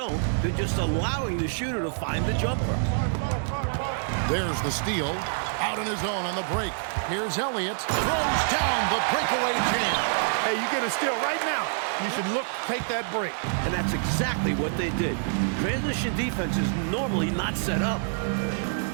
they're just allowing the shooter to find the jumper. There's the steal. Out in his own on the break. Here's Elliott. Throws down the breakaway jam. Hey, you get a steal right now. You should take that break. And that's exactly what they did. Transition defense is normally not set up.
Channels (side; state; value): left; silent; 59 dB below the other